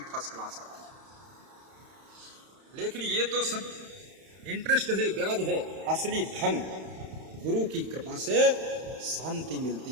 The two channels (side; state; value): left; late; 31 ms